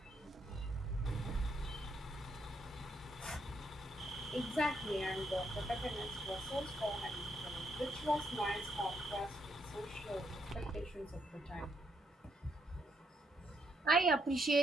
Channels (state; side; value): normal; both; correlation 0.75